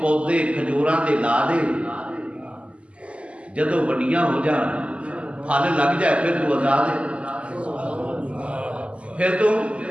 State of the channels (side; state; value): left; late; 0.058 ms